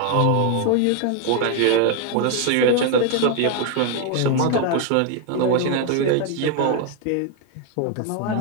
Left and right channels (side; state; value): both; different; correlation 0.01